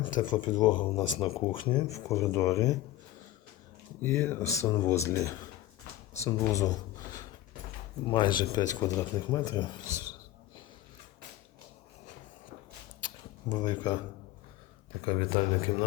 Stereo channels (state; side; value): quieter; right; 15.0 dB